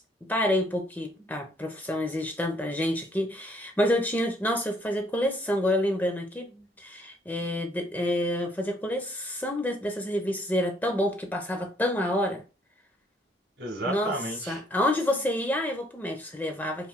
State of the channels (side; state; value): both; normal; correlation 0.66